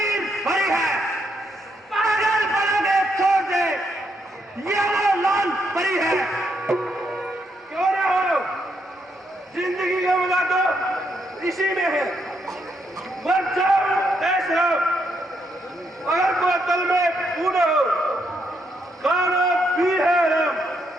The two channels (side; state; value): both; normal; correlation 0.77